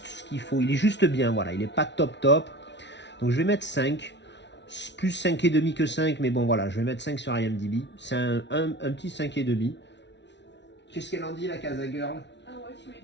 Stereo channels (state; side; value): late; right; 0.51 ms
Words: ce qu'il faut. Il est juste bien, voilà. Il est pas top top. Donc je vais mettre 5 plus 5,5 que 5, mais bon voilà, je vais mettre 5 sur IMDb. C'est un petit 5,5. Qu'est-ce qu'elle en dit, la Casa Girl? Ah ouais, tu mets